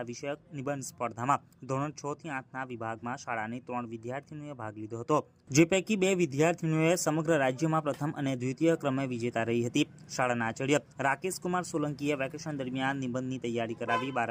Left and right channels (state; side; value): identical; both; correlation 1.00